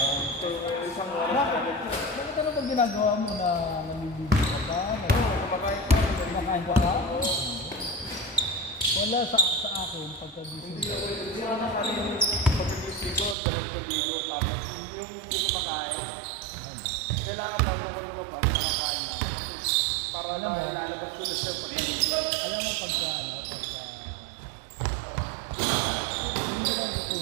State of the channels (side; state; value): left; drops out; at 13.4 s